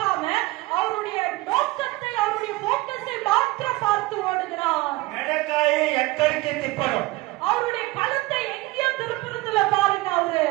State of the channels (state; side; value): quieter; left; 20.4 dB